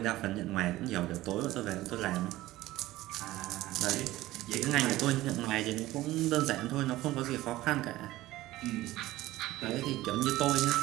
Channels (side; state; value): left; quieter; 16.7 dB